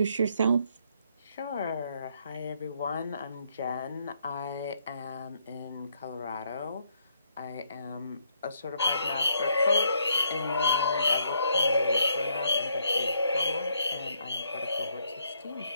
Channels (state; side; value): inverted; both; correlation -0.72